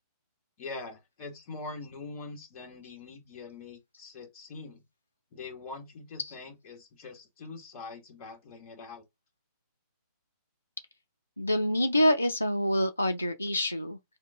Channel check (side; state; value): both; inverted; correlation -0.87